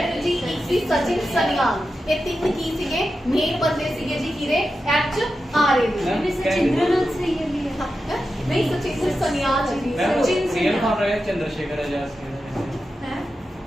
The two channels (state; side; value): normal; both; correlation 0.90